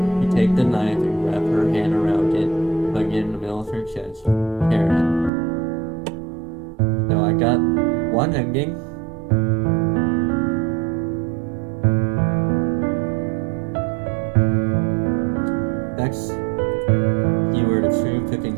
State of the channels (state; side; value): drops out; left; at 5.3 s